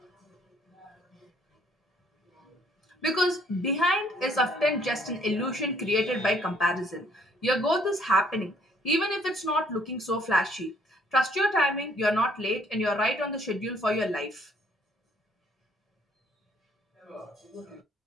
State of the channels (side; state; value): both; normal; correlation 0.63